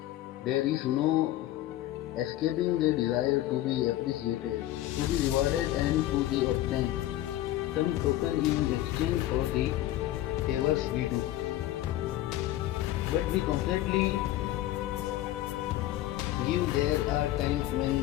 There is no escaping the desire to be appreciated, to be rewarded, and to be obtained some token in exchange for the favors we do. But we constantly give. There are times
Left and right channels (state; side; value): quieter; right; 14.5 dB